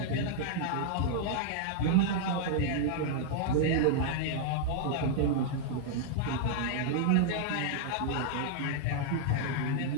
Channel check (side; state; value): both; different; correlation -0.01